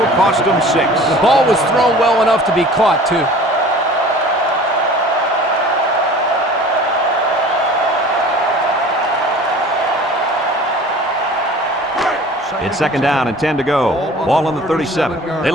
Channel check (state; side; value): normal; both; correlation 0.44